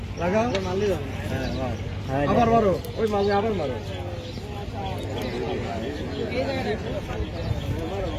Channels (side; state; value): both; identical; correlation 1.00